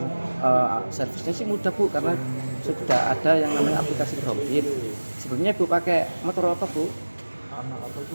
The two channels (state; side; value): inverted; both; correlation -1.00